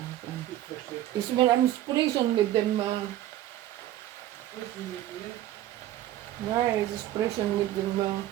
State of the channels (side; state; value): left; quieter; 13.6 dB